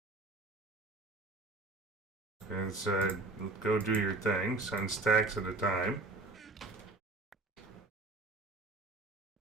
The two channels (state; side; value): quieter; left; 3.2 dB